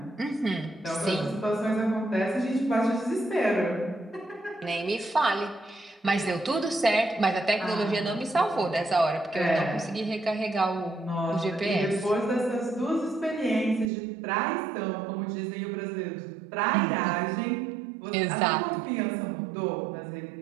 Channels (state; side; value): drops out; left; at 13.9 s